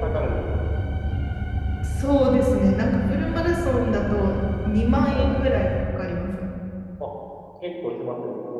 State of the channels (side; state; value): both; identical; correlation 1.00